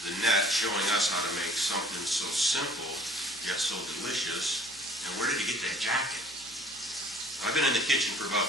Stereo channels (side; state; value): left; noise; hum, 27 dB below the sound